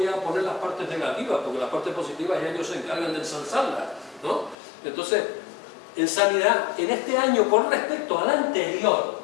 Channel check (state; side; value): drops out; right; at 4.5 s